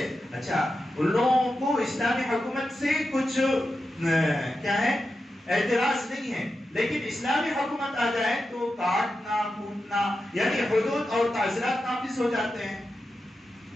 اچھا ان لوگوں کو اسلامی حکومت سے کچھ کیا ہے اعتراض نہیں ہے، لیکن اسلامی حکومت آ جائے تو کاٹنا کوٹنا یعنی حدود اور تعزیرات نافذ ہو جاتے ہیں۔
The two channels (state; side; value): normal; both; correlation 0.90